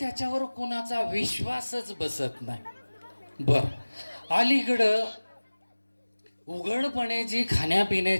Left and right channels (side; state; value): both; inverted; correlation -1.00